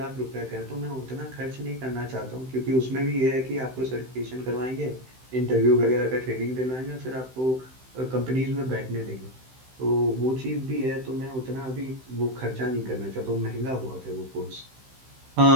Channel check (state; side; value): late; left; 15 ms